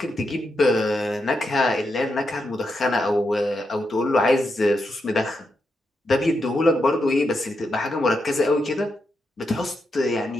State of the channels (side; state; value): both; normal; correlation 0.84